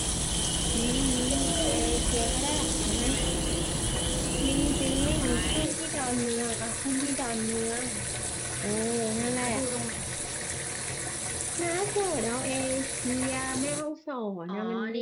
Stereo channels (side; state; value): both; identical; correlation 1.00